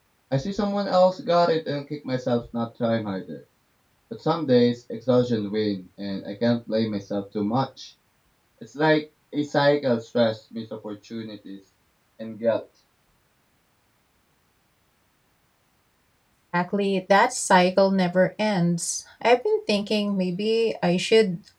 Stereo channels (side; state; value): both; identical; correlation 1.00